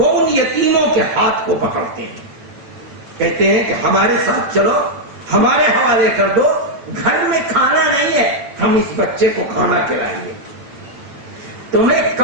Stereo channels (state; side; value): late; left; 8.9 ms